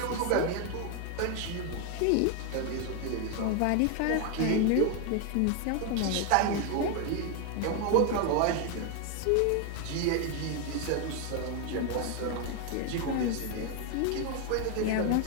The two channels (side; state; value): both; different; correlation 0.01